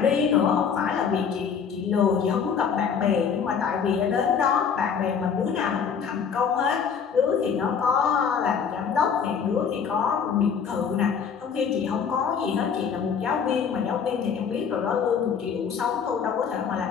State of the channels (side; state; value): right; quieter; 6.8 dB